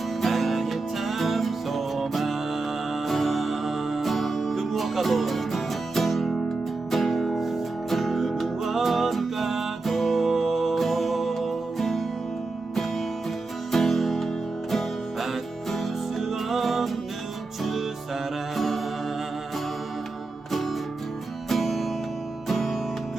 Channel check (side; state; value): left; quieter; 3.5 dB